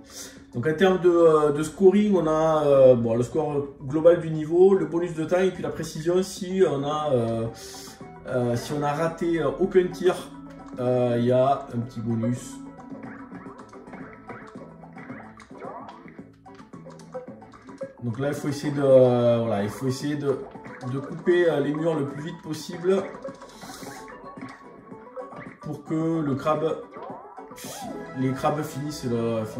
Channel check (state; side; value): identical; both; correlation 1.00